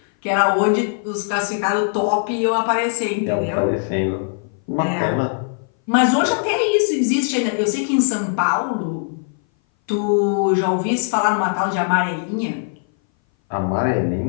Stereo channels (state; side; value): silent; right; 60 dB below the other